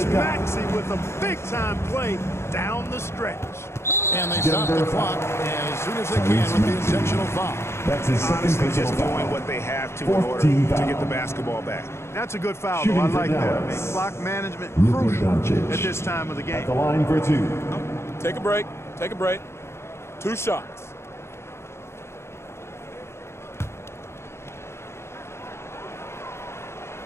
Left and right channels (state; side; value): late; right; 0.13 ms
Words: Maxey with a big-time play down the stretch. And they stop the clock as soon as they can with the intentional foul. That's his second Honestly, personal just foul. doing what they have to in order 14 to foul. get the basketball back. That's a good foul, Shooting though. I for like that. I mean, Dallas. clock management Luka crucial Doncic. at this time of the At the game. line for 2. Take a break. Take a break. 2 shots.